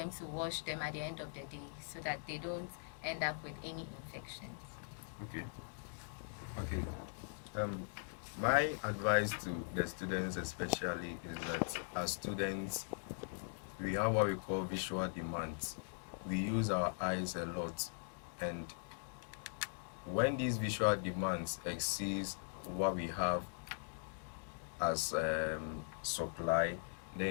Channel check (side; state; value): right; silent; digital silence